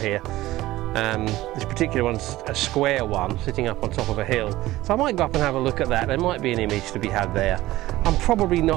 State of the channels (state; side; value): quieter; left; 16.8 dB